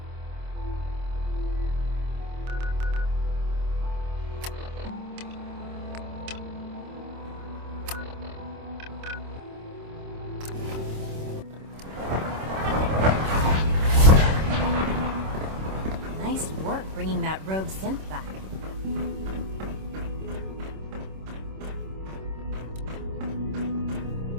Nice work bringing that rogue synth back.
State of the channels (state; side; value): late; left; 26 ms